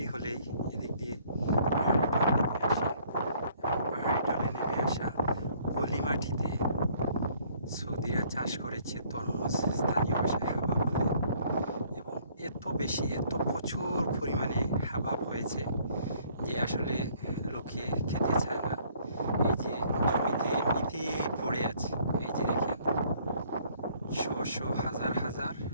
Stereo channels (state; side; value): inverted; both; correlation -0.61